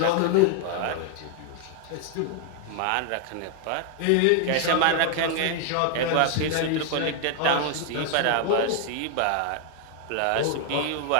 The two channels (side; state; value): both; different; correlation 0.00